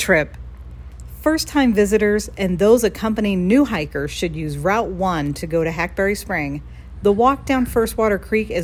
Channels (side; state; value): both; identical; correlation 1.00